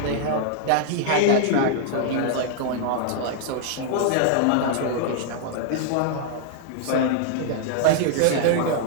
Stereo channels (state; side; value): different; both; correlation 0.00